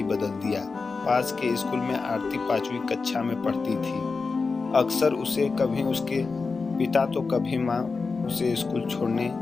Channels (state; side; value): quieter; right; 4.4 dB